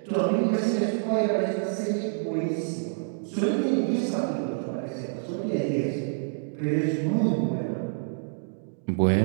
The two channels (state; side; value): silent; left; digital silence